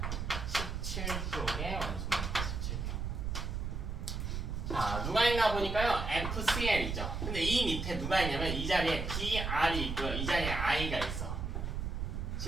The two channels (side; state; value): right; noise; rumble, 3 dB below the sound